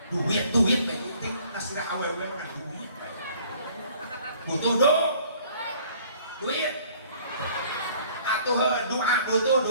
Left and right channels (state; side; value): inverted; both; correlation -0.56